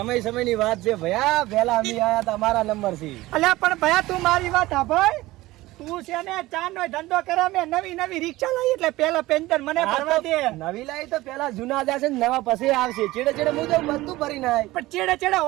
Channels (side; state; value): left; quieter; 18.3 dB